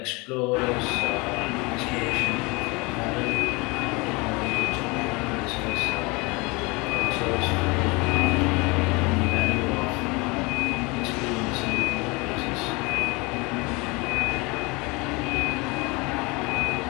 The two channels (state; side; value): quieter; right; 26.4 dB